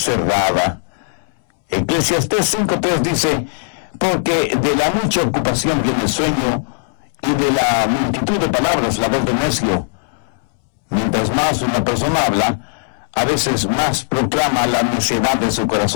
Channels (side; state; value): right; silent; 67 dB below the other